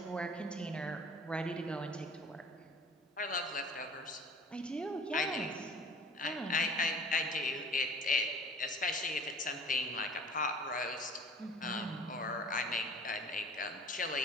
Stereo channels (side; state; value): both; normal; correlation 0.47